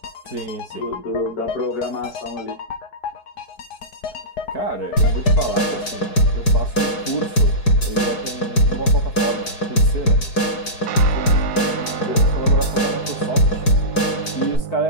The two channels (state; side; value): late; right; 4.7 ms